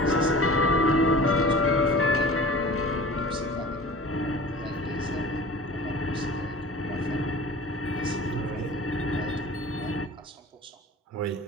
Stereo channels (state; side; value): normal; both; correlation 0.40